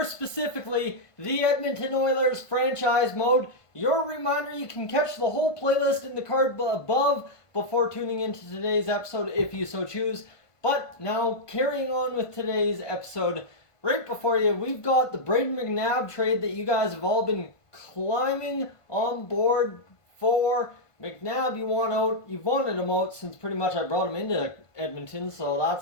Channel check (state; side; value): late; right; 1.5 ms